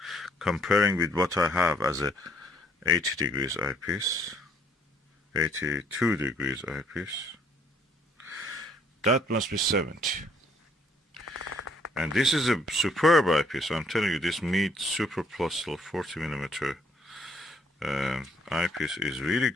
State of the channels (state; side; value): normal; both; correlation 0.64